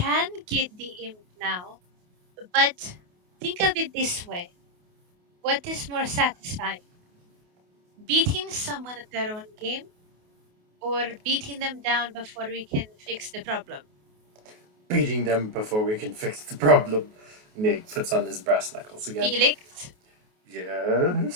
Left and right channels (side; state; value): left; late; 28 ms